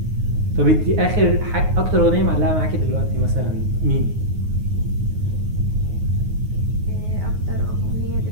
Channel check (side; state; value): left; late; 9.5 ms